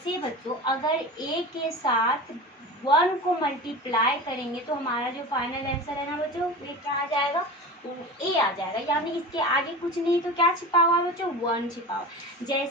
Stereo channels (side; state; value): both; normal; correlation 0.31